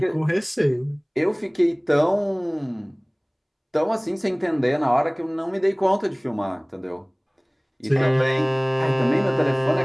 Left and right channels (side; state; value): both; identical; correlation 1.00